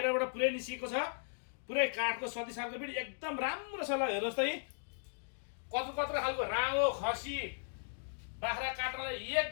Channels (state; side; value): silent; right; digital silence